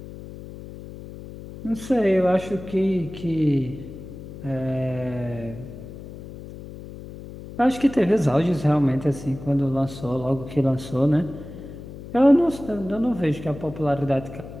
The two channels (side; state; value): left; noise; hum, 13 dB below the sound